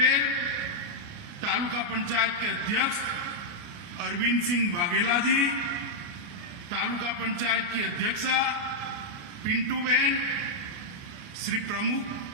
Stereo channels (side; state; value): left; late; 29 ms